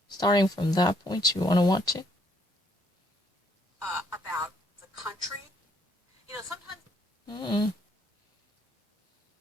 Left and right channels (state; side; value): normal; both; correlation 0.68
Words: Starting from that point, you want to watch it? About the country. Sometimes...